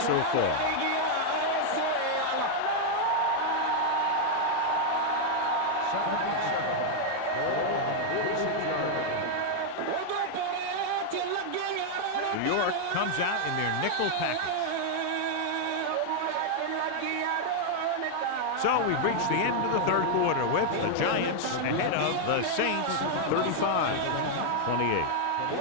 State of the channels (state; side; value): different; both; correlation 0.00